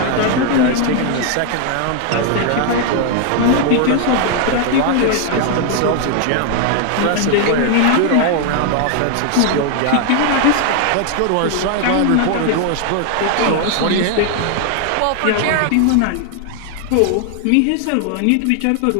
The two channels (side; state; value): both; different; correlation 0.00